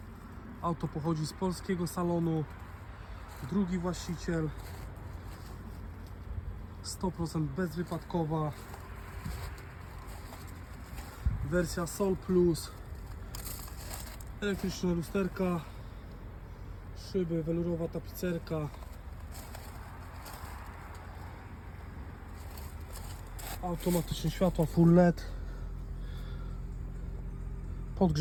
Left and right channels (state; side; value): identical; both; correlation 1.00